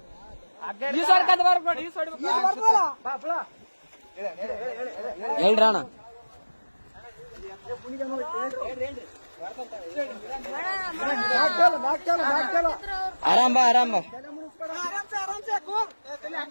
ಹೇಳ್ರಿ ಅಣ್ಣ. ಆರಾಮ್ ಬಾ ಆರಾಮ್ ಬಾ.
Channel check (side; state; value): both; inverted; correlation -1.00